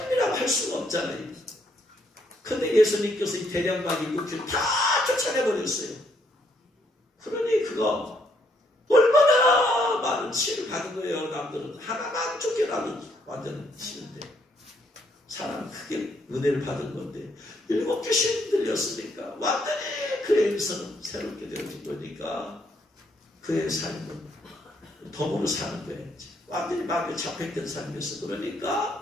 할 수가 없잖아요. 근데 예수님께서 이 대량만 7 귀신 다 쫓아내버렸어요. 그러니 그거 얼마나 많은 치유를 받은 거예요. 남들은 하나만 쫓겨나도 완전 치는데 사람은 크게 은혜를 받은 건데 7 귀신 들렸으니까 완전히 그의 인생은 새롭게 되어진 거니까 그의 삶은 덤으로 사는 거예요. 완전히 마음에 잡혀있던 삶이었어.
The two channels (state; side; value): normal; both; correlation 0.71